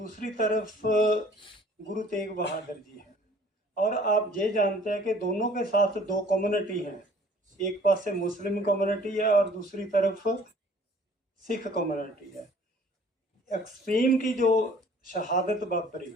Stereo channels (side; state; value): both; normal; correlation 0.53